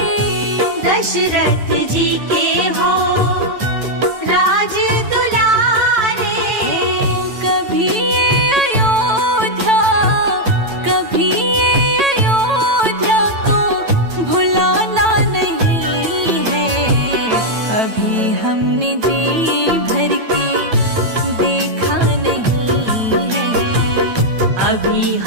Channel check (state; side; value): late; left; 9.0 ms